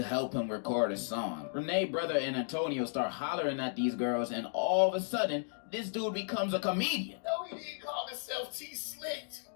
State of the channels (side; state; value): right; silent; digital silence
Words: help him record a song. Renee's brother and Antonio start hollering at these girls, and all of a sudden, this dude becomes a comedian. No, he didn't call himself T-Slick.